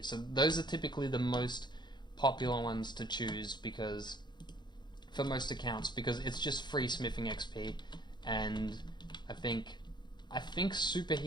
So those are typically the most popular ones to choose, because for most accounts, because it's just free smithing XP. And I think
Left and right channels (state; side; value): late; right; 0.21 ms